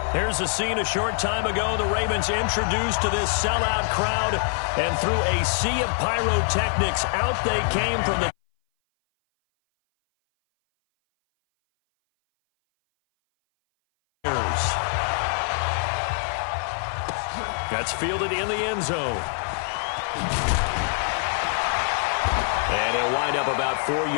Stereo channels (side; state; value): right; silent; 58 dB below the other